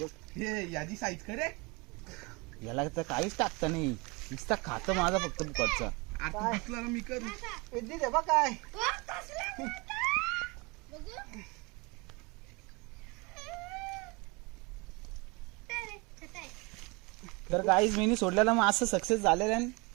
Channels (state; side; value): quieter; left; 26.9 dB